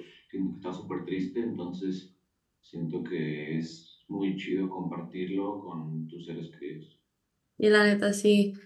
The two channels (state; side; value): identical; both; correlation 1.00